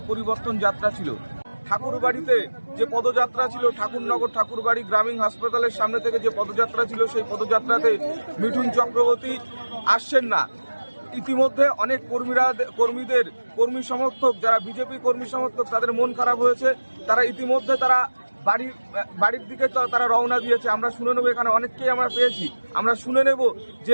পরিবর্তন যাত্রা ছিল। ঠাকুরবাড়িতে যে পদযাত্রা ছিল, ঠাকুরনগর ঠাকুরবাড়ি গ্রামীণ হাসপাতালের সামনে থেকে যে পদযাত্রা ছিল, সেই পদযাত্রাতে মিঠুন চক্রবর্তী আসছেন না। ইতিমধ্যে অনেক কর্মীদের কর্মী সমর্থক, যারা বিজেপি কর্মী সমর্থক, তাদের মন খারাপ হয়েছে। তারা ইতিমধ্যে বাড়ির দিকে তারা রওনা দিয়েছে। আমরা শুনে নেব, এখানে অনেককেই আমরা পেয়েছি, আমরা শুনে নেব যে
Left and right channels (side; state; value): both; inverted; correlation -1.00